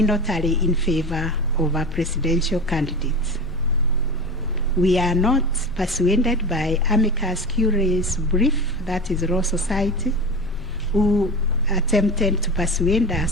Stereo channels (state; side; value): noise; left; rumble, 15 dB below the sound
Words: tally in favor of a presidential candidate. We are not persuaded by amicus curiae's brief, that is Law Society, who attempted to persuade